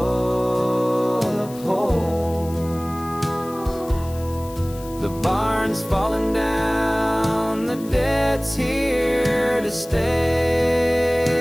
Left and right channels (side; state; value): left; noise; hiss, 19 dB below the sound